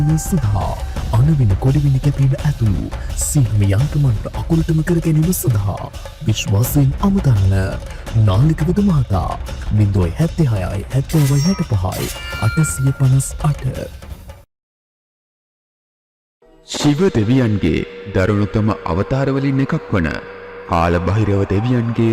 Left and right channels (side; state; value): both; identical; correlation 1.00